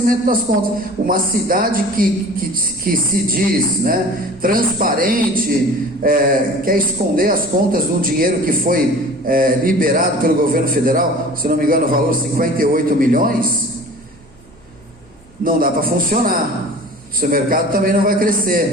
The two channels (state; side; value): noise; left; hum, 30 dB below the sound